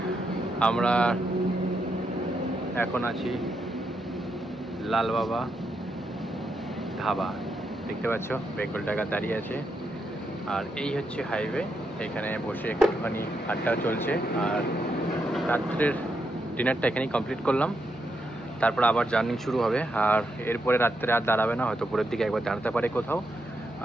আমরা এখন আছি লাল বাবা ধাবা। দেখতে পাচ্ছ বেঙ্গল টাইগার দাঁড়িয়ে আছে। আর এই হচ্ছে হাইওয়ে। এখানে বসে একটুখানি আড্ডা চলছে। আর রাত্রের ডিনারটা এখানেই কমপ্লিট করলাম। তারপর আবার জার্নি শুরু হবে। আর এরপরে রাত্রে আর দাঁড়াবে না, হয়তো ভোরের দিকে একবার দাঁড়াতে পারে কোথাও।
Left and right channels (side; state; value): both; normal; correlation 0.82